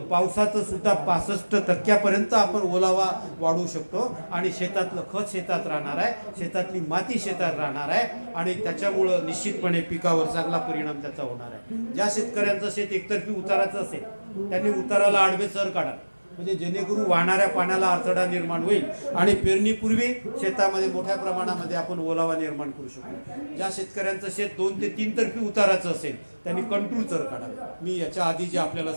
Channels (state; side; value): inverted; both; correlation -1.00